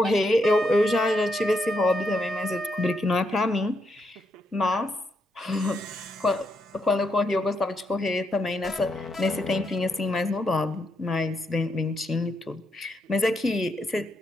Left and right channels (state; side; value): normal; both; correlation 0.80